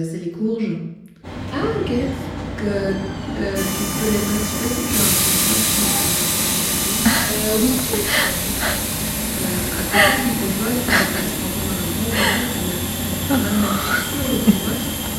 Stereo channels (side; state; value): both; identical; correlation 1.00